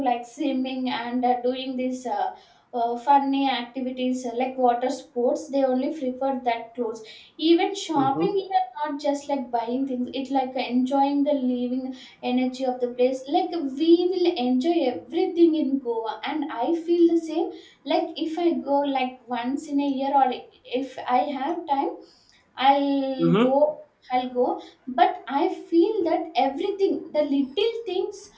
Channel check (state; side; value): identical; both; correlation 1.00